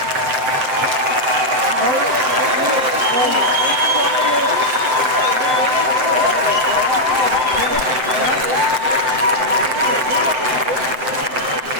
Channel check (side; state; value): left; late; 7.9 ms